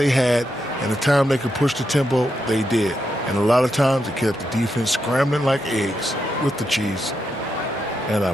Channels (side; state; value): both; normal; correlation 0.84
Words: had, and the time they could push the tempo, they did. And a lot of times it kept the defense scrambling like eggs with the cheese and